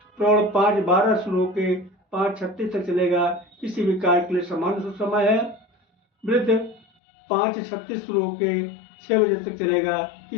प्रौढ़ 5:12 शुरू होकर 5:36 तक चलेगा, किसी भी कार्य के लिए समान शुभ समय है। वृद्ध 5:36 शुरू होकर 6 बजे तक चलेगा,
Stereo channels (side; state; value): right; drops out; at 6.9 s